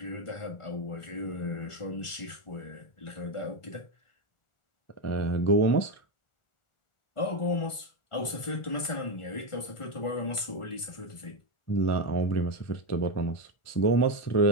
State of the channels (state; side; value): late; right; 1.5 ms